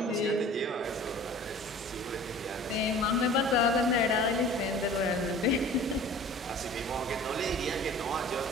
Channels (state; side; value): normal; both; correlation 0.44